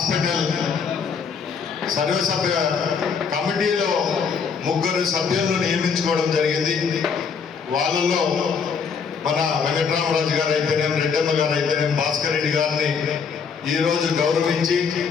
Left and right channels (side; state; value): right; quieter; 6.0 dB